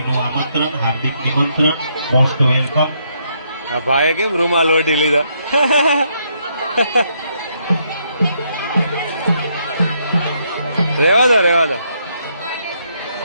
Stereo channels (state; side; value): inverted; both; correlation -0.74